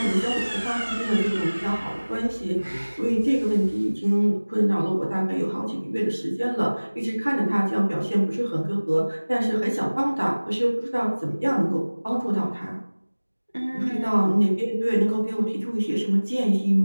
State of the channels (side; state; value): both; inverted; correlation -1.00